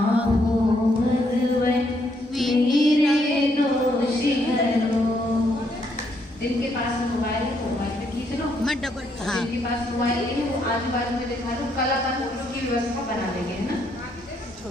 हूँ भगवन मेरे दोष हरो। जिनके पास मोबाइल है मोबाइल पे खींच लो। मैं डबल जिनके पास मोबाइल नहीं है वो आजू बाजू में दिखा दो, कल अपन फोटो की व्यवस्था बना देंगे ना।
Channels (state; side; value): normal; both; correlation 0.73